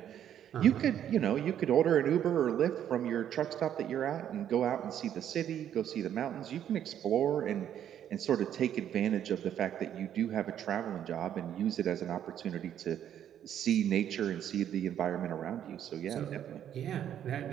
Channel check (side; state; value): left; quieter; 10.1 dB